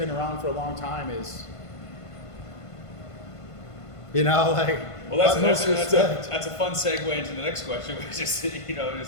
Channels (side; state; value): right; late; 1.5 ms